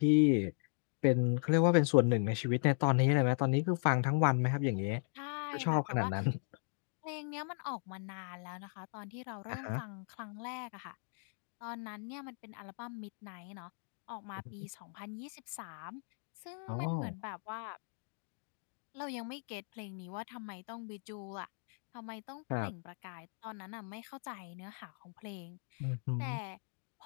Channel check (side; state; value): right; silent; 53 dB below the other